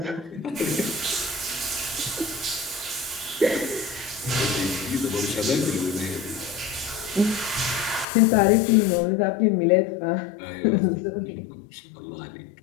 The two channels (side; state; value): right; drops out; at 8.1 s